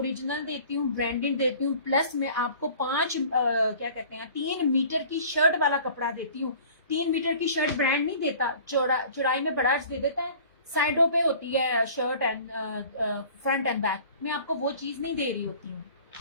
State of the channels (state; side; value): inverted; both; correlation -0.47